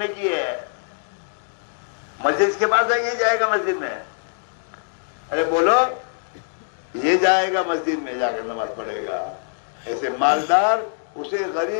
کی ہے. مسجد کے پاس جائے گا مسجد میں، ارے بولو یہ جائے گا مسجد میں جا کر نماز پڑھے گا. ایسے مالدار اسے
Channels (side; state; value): right; silent; digital silence